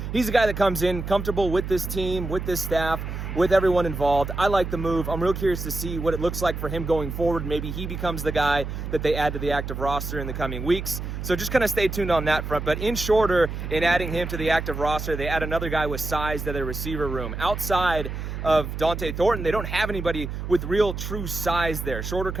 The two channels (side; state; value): right; noise; hum, 6 dB below the sound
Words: he's a guy that comes in comfortable with this team, with this staff, with everyone involved. I like the move. I'm real curious to see what it looks like for him going forward. Maybe he becomes the guy that they add to the active roster in the coming weeks. So just kind of stay tuned on that front. But in Shorter, in adding him to the active roster, they add another guy with size to their receiver room. Outside of Dante Thornton, they don't have anybody with real true size there. Shorter